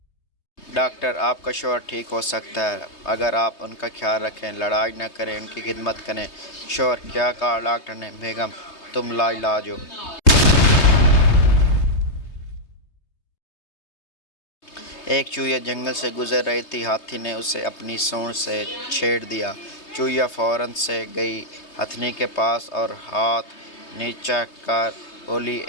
डॉक्टर: आपका शौहर ठीक हो सकता है अगर आप उनका ख्याल रखें, लड़ाई न करें, उनकी खिदमत करें। शौहर: क्या कहा डॉक्टर ने? बेगम: तुम लाइलाज हो। एक चूहिया जंगल से गुजर रही थी, हाथी ने उसे अपनी सूंड से छेड़ दिया। चूहिया फौरन से गई हथनी के पास और हाथ नीचा कर बोली,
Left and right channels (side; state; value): right; late; 3.2 ms